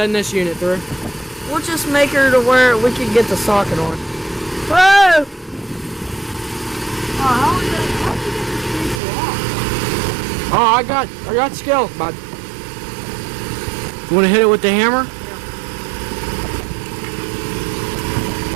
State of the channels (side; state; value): left; drops out; at 9.0 s